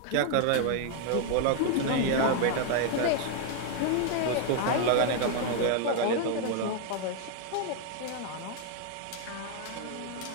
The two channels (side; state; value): both; different; correlation 0.00